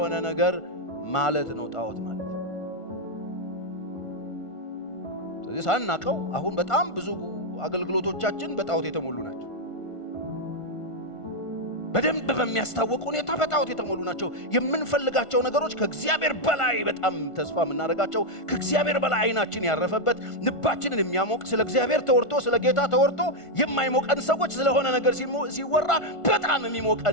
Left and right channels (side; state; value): right; late; 1.5 ms